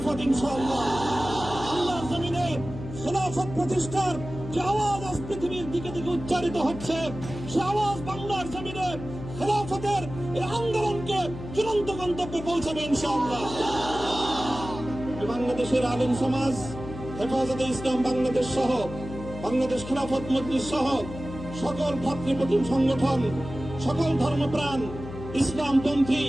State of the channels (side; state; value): left; noise; hum, 11 dB below the sound